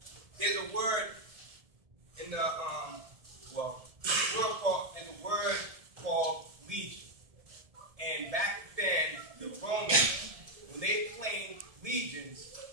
There's a word in there's a word called legion. And back then, the Romans, when they claimed legions,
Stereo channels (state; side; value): late; left; 1.7 ms